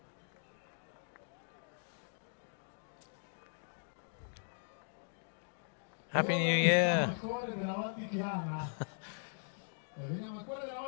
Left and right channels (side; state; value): right; silent; digital silence